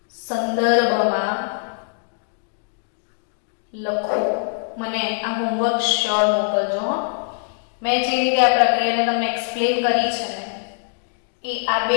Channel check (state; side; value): silent; right; 64 dB below the other